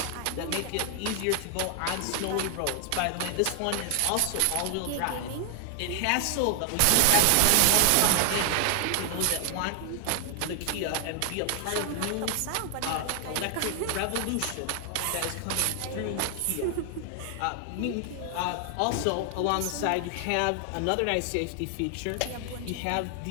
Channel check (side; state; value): both; different; correlation 0.00